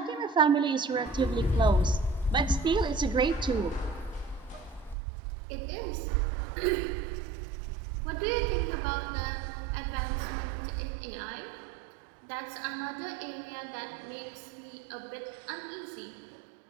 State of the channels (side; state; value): left; drops out; at 5.0 s